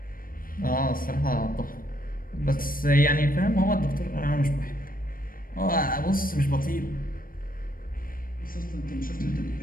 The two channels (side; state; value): right; late; 0.41 ms